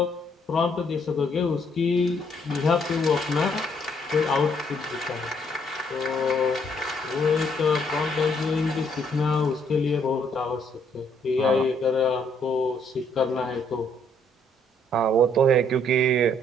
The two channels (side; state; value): both; normal; correlation 0.68